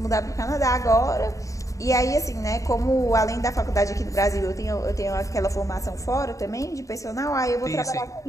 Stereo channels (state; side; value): late; right; 0.16 ms